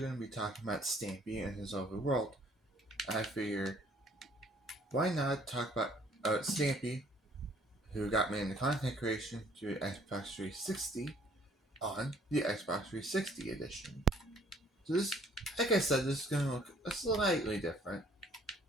to be talking about Stampy and his overworld. I figure, why not talk about Stampy, who got me into content creation through Xbox 360 on the Xbox 360 edition. So this, like I said, this is going to look slightly different,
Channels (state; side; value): normal; both; correlation 0.60